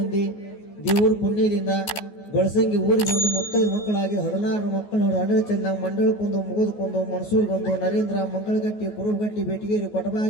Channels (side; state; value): right; late; 14 ms